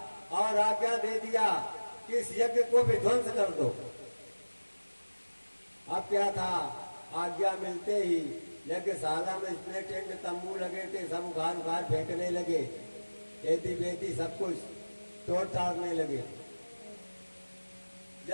और आज्ञा दे दिया कि इस यज्ञ को विध्वंस कर दो। अब क्या था, आज्ञा मिलते ही यज्ञशाला में इतने टेंट तंबू लगे थे, सब उखाड़ उखाड़ फेंकने लगे, खेती बेती सब कुछ तोड़ ताड़ने लगे।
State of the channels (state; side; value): inverted; both; correlation -1.00